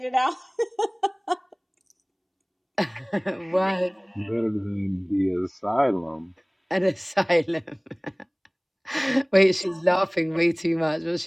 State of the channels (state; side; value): identical; both; correlation 1.00